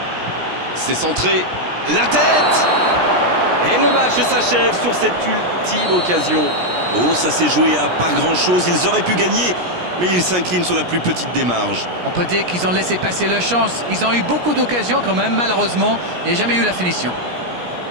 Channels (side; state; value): left; late; 17 ms